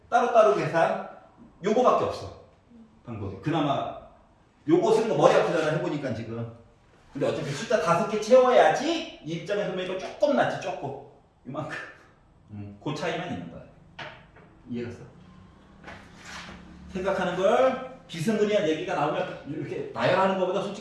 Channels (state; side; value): identical; both; correlation 1.00